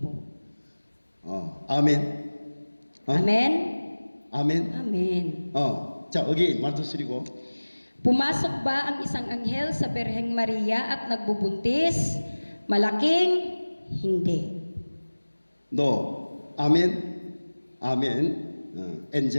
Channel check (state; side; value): inverted; both; correlation -1.00